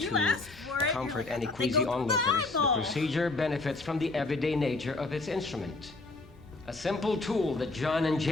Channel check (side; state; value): right; quieter; 3.3 dB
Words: You to asked for it. comfort You're any like, they go queasy to onlookers, the Bible. procedure benefits from the everyday nature of its instrument. A simple tool that John and